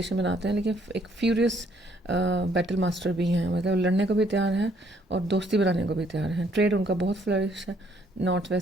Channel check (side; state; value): both; normal; correlation 0.66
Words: बनाते हैं, लेकिन एक फ्यूरियस बैटल मास्टर भी हैं, मतलब लड़ने को भी तैयार हैं और दोस्ती बनाने को भी तैयार हैं। ट्रेड उनका बहुत फ्लरिश है नॉर्थ